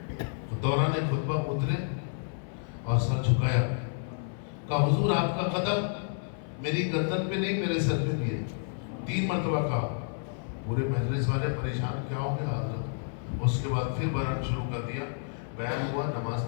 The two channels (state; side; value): silent; right; 58 dB below the other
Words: دوران خطبہ اترے اور سر جھکایا، کہا حضور آپ کا قدم میری گردن پہ نہیں میرے سر پہ بھی ہے. 3 مرتبہ کہا. پورے مجلس والے پریشان، کیا ہو گیا حضرت؟ اس کے بعد پھر بیان شروع کر دیا. بیان ہوا، نماز